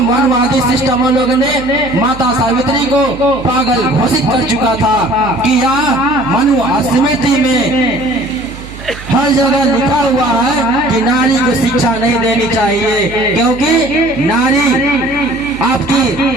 मनवादी सिस्टम लोगों ने माता सावित्री को पागल घोषित कर चुका था कि यह मनु स्मृति में हर जगह लिखा हुआ है कि नारी को शिक्षा नहीं देनी चाहिए, क्योंकि नारी आपकी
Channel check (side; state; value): right; noise; hum, 15 dB below the sound